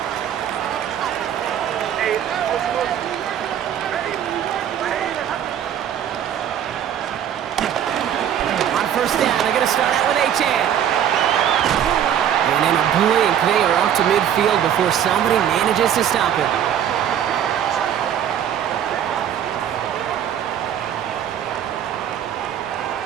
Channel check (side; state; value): left; quieter; 9.7 dB